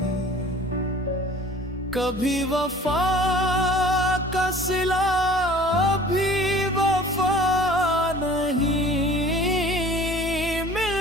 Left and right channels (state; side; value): normal; both; correlation 0.47